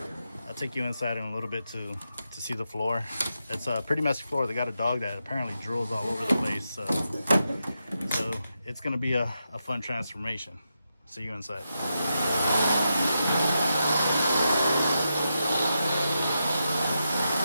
I'll take you inside in a little bit to see the floor. It's a pretty messy floor. They got a dog that apparently drools all over the place, so it's gonna be a fun transformation. See you inside.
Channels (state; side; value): inverted; both; correlation -0.87